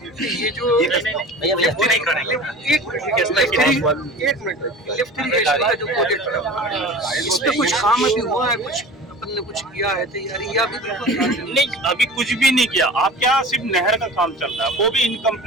ये जो लिफ्ट नहीं करेंगे, एक मिनट, लिफ्ट इरिगेशन का जो प्रोजेक्ट है, इस पे कुछ काम अभी हुआ है, कुछ अपन ने कुछ किया है तैयारी, या अभी नहीं, अभी कुछ भी नहीं किया। आपके यहाँ सिर्फ नहर का काम चल रहा है, वो भी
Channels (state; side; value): normal; both; correlation 0.37